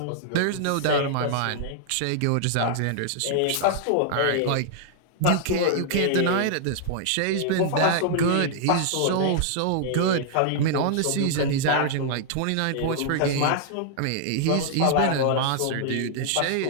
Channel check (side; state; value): both; different; correlation -0.01